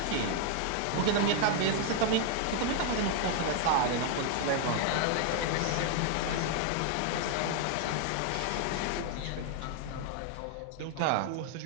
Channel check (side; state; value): both; different; correlation 0.00